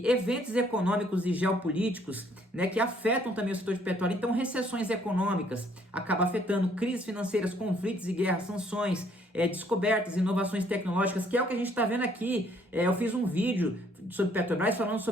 Eventos econômicos e geopolíticos, né, que afetam também o setor de petróleo. Então, recessões econômicas acabam afetando, crises financeiras, conflitos e guerras, sanções, descobertas, inovações tecnológicas, que é o que a gente está vendo aqui. Eu fiz um vídeo sobre Petrobras falando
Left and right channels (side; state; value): both; normal; correlation 0.64